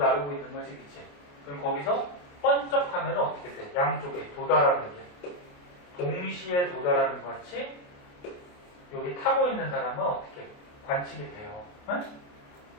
있는 거지, 그치? 그럼 거기서 번쩍하면 어떻게 돼? 양쪽에 도달하는 게 동시에 도달하는 것 같이 여기 타고 있는 사람은 어떻게 관측이 돼요. 응?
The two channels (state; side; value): late; right; 28 ms